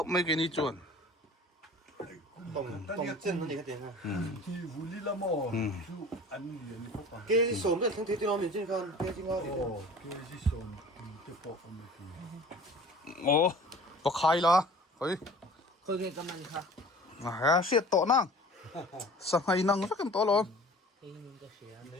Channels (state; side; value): normal; both; correlation 0.44